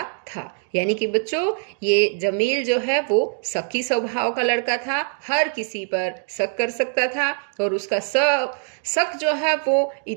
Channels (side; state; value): left; silent; 63 dB below the other